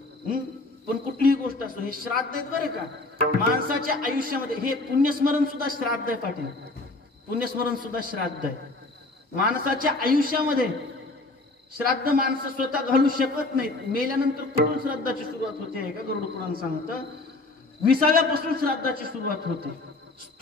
पण कुठलीही गोष्ट असो, हे श्राद्ध आहेत बरं का. माणसाच्या आयुष्यामध्ये हे पुण्यस्मरण सुद्धा श्राद्ध आहे पाटील. पुण्यस्मरण सुद्धा श्राद्ध आहे. माणसाच्या आयुष्यामध्ये श्राद्ध माणसं स्वतः घालू शकत नाहीत. मेल्यानंतर कुठून श्राद्धाची सुरुवात होते आहे का गरुड पुराण सांगतं. 20व्यापासून श्राद्धाची सुरुवात होते.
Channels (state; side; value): quieter; right; 3.0 dB